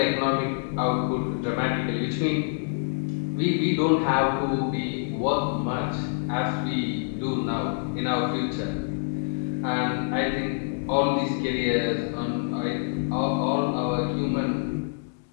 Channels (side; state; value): right; silent; digital silence